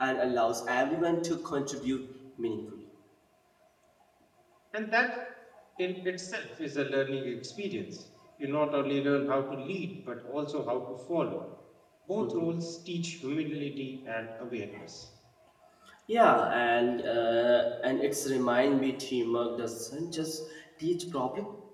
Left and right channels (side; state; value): both; identical; correlation 1.00